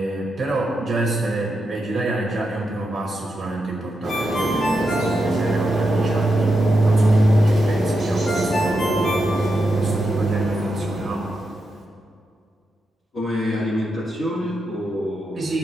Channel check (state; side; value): normal; both; correlation 0.86